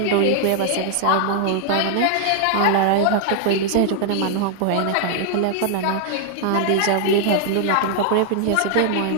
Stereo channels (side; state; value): both; different; correlation 0.00